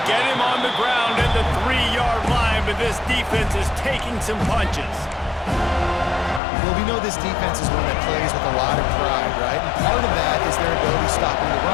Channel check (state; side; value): drops out; right; at 6.4 s